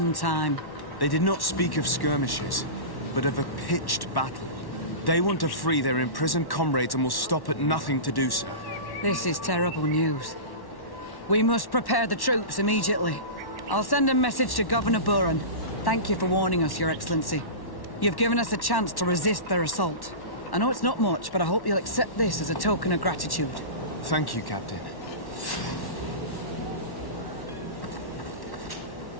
time. They did not speak of skirmishes, but of a pitched battle. They want to free their imprisoned comrades and will stop at nothing to do so. This is terrible news. We must prepare the troops immediately. I'll send a message to Governor Buran. Thank you for warning us, Your Excellency. You've given us a chance to resist their assault. I know it's not much, but I hope you'll accept this as a token of gratitude. Thank you, Captain.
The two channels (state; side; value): late; right; 1.1 ms